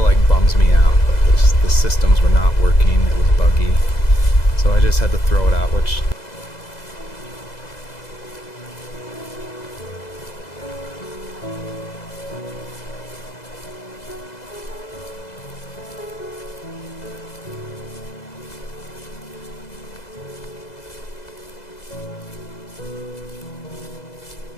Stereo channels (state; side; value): late; right; 2.0 ms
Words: like bums me out, but the systems were not working, it was buggy, so I just had to throw it out, which